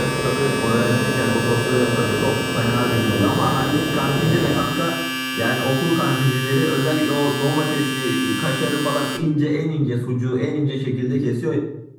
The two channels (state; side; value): identical; both; correlation 1.00